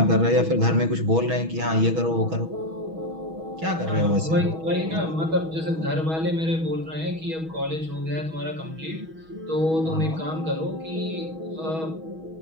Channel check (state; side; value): late; left; 6.2 ms